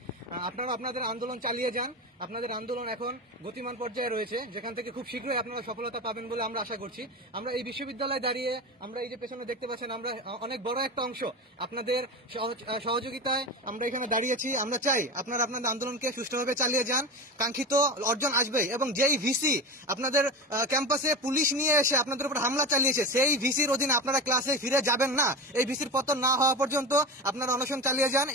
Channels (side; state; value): both; normal; correlation 0.25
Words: আপনারা আপনাদের আন্দোলন চালিয়ে যান। আপনাদের আন্দোলন এখন গতিমান পর্যায়ে রয়েছে, যেখান থেকে খুব শীঘ্রই আপনারা সফলতা পাবেন বলে আমরা আশা করছি। আমরা এই বিশ্ববিদ্যালয়ে দাঁড়িয়ে আমরা এই যে পেছনে দেখতে পাচ্ছেন, আমরা অনেক বড় একটা অংশ আপনাদের সহযোগিতায় আমরা এখানে দাঁড়িয়েছি। আমরা চাই আপনারা আপনাদের আন্দোলনকে সুষ্ঠুভাবে চালিয়ে যান। কাঙ্ক্ষিত অর্জন আসবেই, এবং যেই ভিসি আপনাদের ক্যাম্পাসে পুলিশ নিয়ে এসে আপনাদের উপর হামলা চালিয়েছে সেই ভিসির অধীনে আপনারা ক্লাসে ফিরে যাবেন না। এই ভিসির পতন না হওয়া পর্যন্ত আপনারা অনশন চালিয়ে যান।